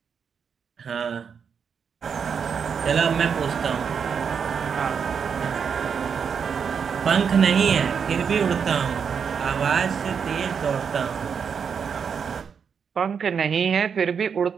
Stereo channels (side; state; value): left; quieter; 6.7 dB